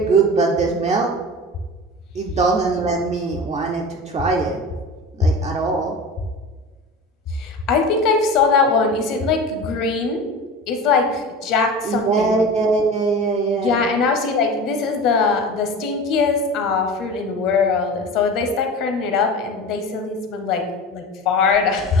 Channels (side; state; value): both; normal; correlation 0.32